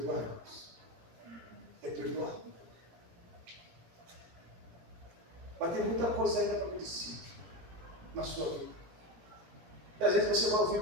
É perdoar. Mas tem muita coisa ainda para acontecer na sua vida. E às vezes você vai ouvir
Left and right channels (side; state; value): left; late; 17 ms